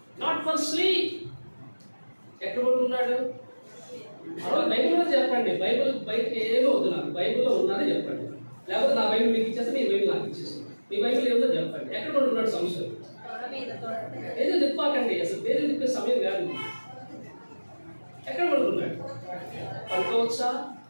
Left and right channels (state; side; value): inverted; both; correlation -1.00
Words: not for sleep. ఎక్కడ కొనుక్కున్నాడు? బైబిల్లో చెప్పండి. బైబిల్ బయటకి ఏమో వద్దు, నాకు బైబిల్లో ఉన్నది చెప్పండి. లేకపోతే నా బైబిల్ మీకు ఇచ్చేస్తే మీ బైబిల్ నాకు ఇచ్చేసి, మీ బైబిల్ ఏదో చెప్పండి. ఎక్కడ కొనుక్కున్నాడు? సంశయం ఏదో తిప్పాకండి, అసలు పేరు తిప్పే సమయం కాదు. ఎక్కడ కొనుక్కున్నాడు? పడుకోవచ్చా?